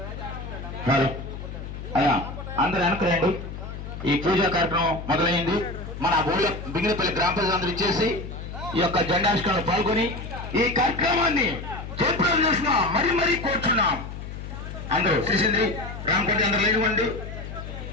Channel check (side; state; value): left; noise; hum, 9 dB below the sound